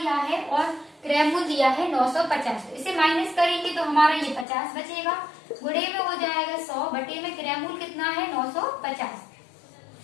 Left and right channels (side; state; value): right; drops out; at 4.5 s